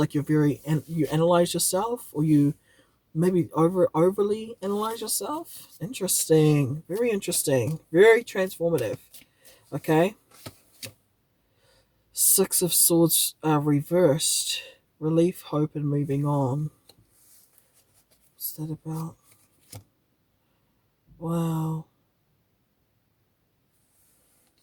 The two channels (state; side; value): identical; both; correlation 1.00